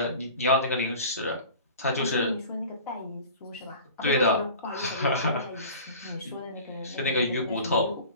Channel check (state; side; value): inverted; both; correlation -0.40